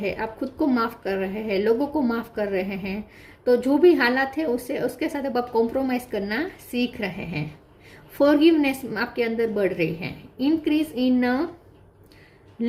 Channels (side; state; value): both; identical; correlation 1.00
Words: आप खुद को माफ़ कर रहे हैं, लोगों को माफ़ कर रहे हैं। तो जो भी हालात है उसके साथ अब आप कॉम्प्रोमाइज़ करना सीख रहे हैं। फॉरगिवनेस आपके अंदर बढ़ रही है। Increase in